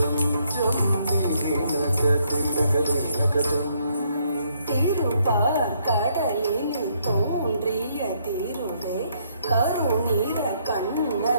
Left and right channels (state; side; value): inverted; both; correlation -0.71